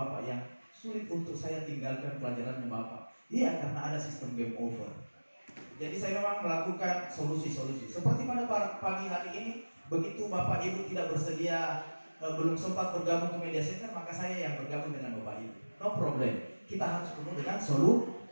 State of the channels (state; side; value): inverted; both; correlation -1.00